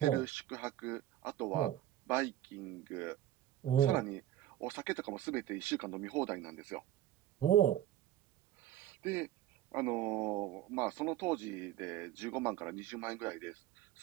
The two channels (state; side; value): quieter; left; 12.9 dB